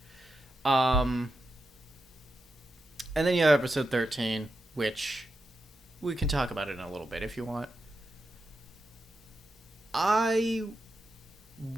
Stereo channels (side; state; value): both; normal; correlation 0.87